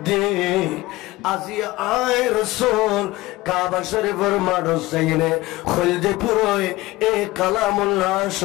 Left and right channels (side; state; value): right; quieter; 19.0 dB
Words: আজি আয় রাসূল কাবা শরীফের মারত যাইনে খলদে পুরোয় এই কালামুল্লাহ